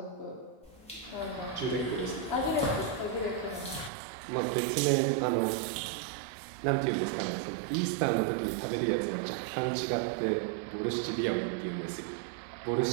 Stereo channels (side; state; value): left; drops out; at 3.9 s